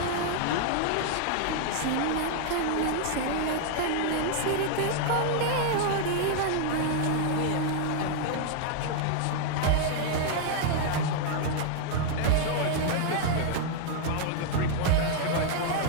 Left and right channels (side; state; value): both; different; correlation -0.01